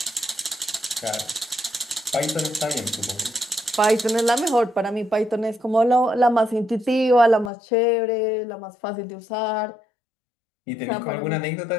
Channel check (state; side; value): drops out; right; at 7.5 s